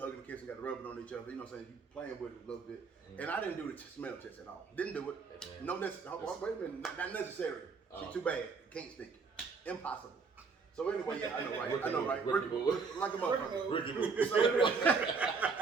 and kissing, got to rubbing on each other, you know what I'm saying? You playing with it a little bit. And I didn't do the smell test at all. Didn't do it. No necessary. Wait a minute, not necessary. She's too bad. Can't stink. Impossible. So anyway, yeah, I know, right? Ricky like a motherfucker. So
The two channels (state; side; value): quieter; left; 4.9 dB